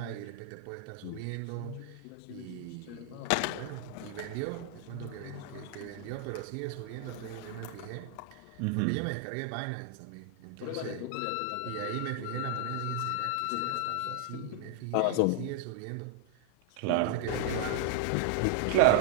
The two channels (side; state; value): both; different; correlation 0.00